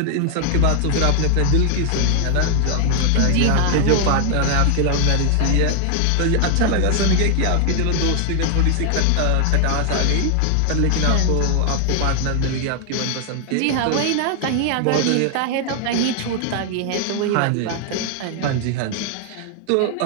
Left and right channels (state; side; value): different; both; correlation 0.00